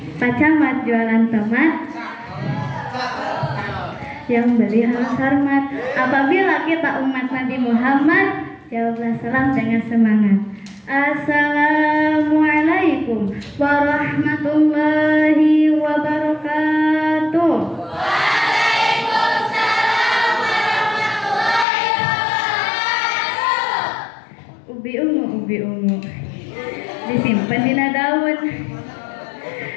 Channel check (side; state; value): right; drops out; at 21.7 s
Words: Pak Camat jualan tomat, yang beli harus hormat. Apabila kita umat Nabi Muhammad, jawablah salam dengan semangat. Assalamualaikum warahmatullahi wabarakatuh. Waalaikumsalam warahmatullahi wabarakatuh. Ubi ungu disimpan di daun.